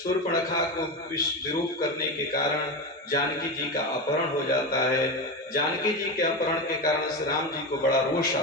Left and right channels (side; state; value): both; normal; correlation 0.19